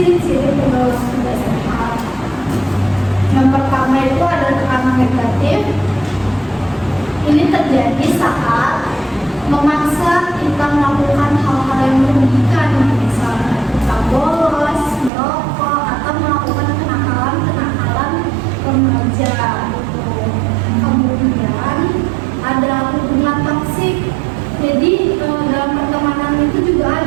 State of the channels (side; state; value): left; drops out; at 15.1 s